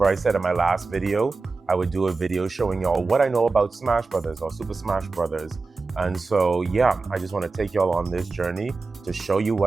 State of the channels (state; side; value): quieter; left; 4.0 dB